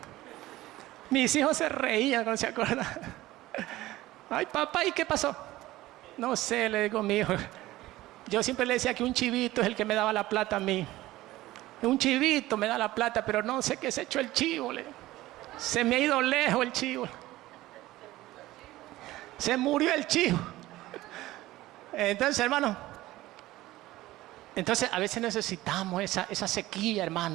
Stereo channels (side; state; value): left; quieter; 16.9 dB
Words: Mis hijos se reían cuando se acuerdan. Ay, papá, ¿y qué pasó? No sé, le digo a mi hijo. Yo siempre le decía que un chivito es el que me daba la plata a mí. Un chivito me da la plata, pero no sé qué se echó el chivo. Se me ha ido lejos el chivo. Se murió el chivo. Entonces, hermano, a veces necesitamos esa sequía,